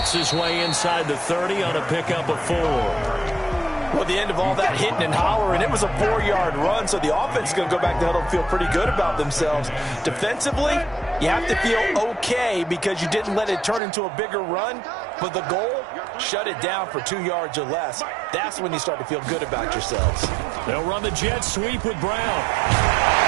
his way inside the 30 on a pickup of 4. Well, at the end of all that hitting and hollering, it was a 4-yard run, so the offense is going to go back to huddle and feel pretty good about themselves. Defensively, you have to feel okay because you didn't let it turn into a bigger run, but the goal, shut it down for 2 yards or less. That's when you start to feel good about yourselves. They'll run the jet sweep with Brown.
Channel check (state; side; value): drops out; left; at 13.8 s